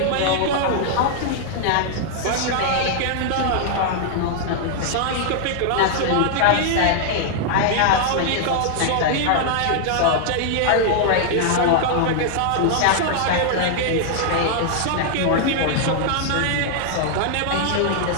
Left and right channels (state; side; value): different; both; correlation -0.01